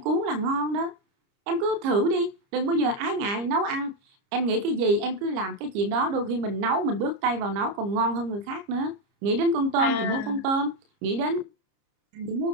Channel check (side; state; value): left; late; 30 ms